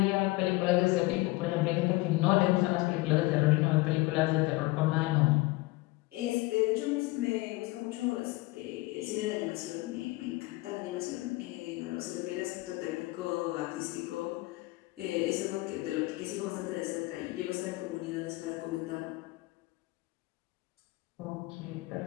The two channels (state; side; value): quieter; right; 21.1 dB